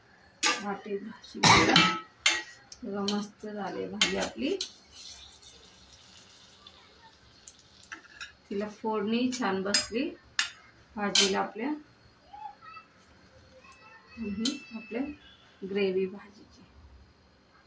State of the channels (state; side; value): identical; both; correlation 1.00